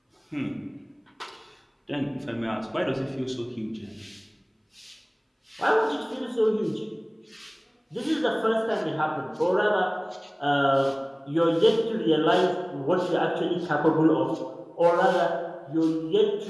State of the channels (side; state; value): both; identical; correlation 1.00